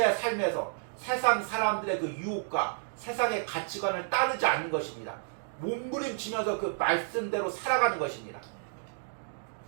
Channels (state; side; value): silent; left; digital silence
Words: 삶에서 세상 사람들의 그 유혹과 세상의 가치관을 따르지 않는 것입니다. 몸부림치면서 그 말씀대로 살아가는 것입니다.